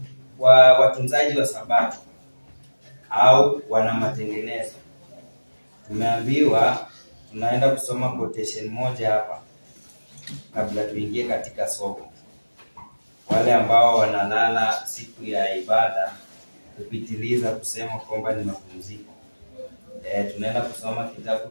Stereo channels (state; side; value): inverted; both; correlation -1.00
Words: kwa watunzaji wa Sabato au wana matengenezo, tumeambiwa tunaenda kusoma quotation moja hapa kabla tuingie katika somo. Wale ambao wanalala siku ya ibada kupitiliza kusema kwamba ni mapumziko, tunaenda kusoma kitabu